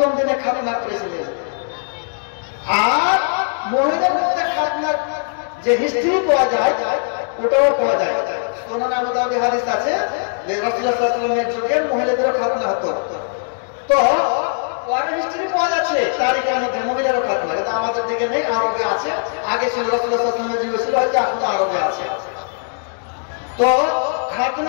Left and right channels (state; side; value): silent; right; 66 dB below the other